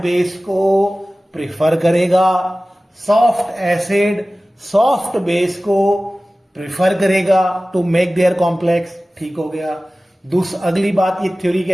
को प्रिफर करेगा, सॉफ्ट एसिड सॉफ्ट बेस को प्रिफर करेगा टू मेक देयर कॉम्प्लेक्स। ठीक हो गया। अगली बात ये थ्योरी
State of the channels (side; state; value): both; normal; correlation 0.97